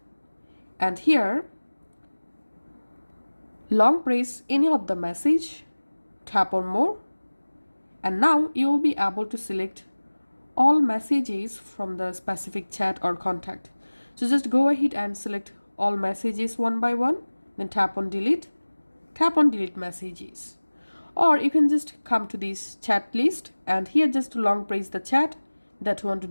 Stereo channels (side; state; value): both; inverted; correlation -1.00